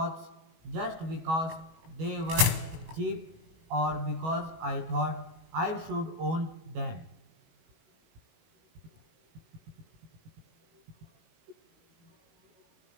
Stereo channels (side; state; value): left; late; 19 ms